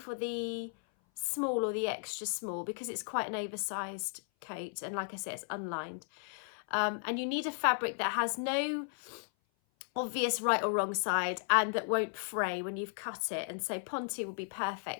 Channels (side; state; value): right; silent; 54 dB below the other